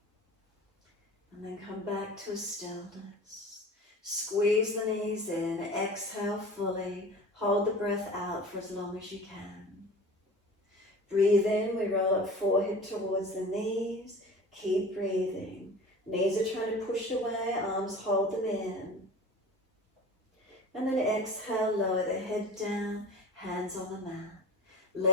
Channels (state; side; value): normal; both; correlation 0.38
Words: And then come back to a stillness. Squeeze the knees in, exhale fully, hold the breath out for as long as you can. Breathe in, we roll up forehead towards the knees, keep breathing. Knees are trying to push away, arms hold them in. And then exhale, lower the head down, hands on the mat.